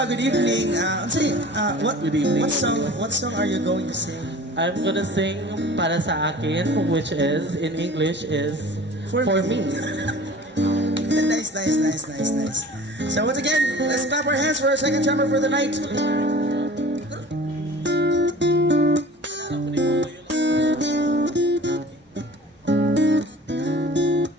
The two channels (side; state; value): both; normal; correlation 0.43